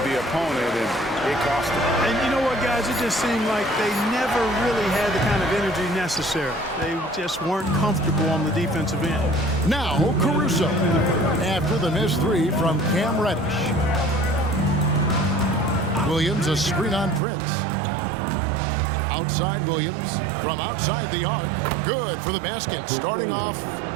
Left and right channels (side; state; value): left; drops out; at 17.2 s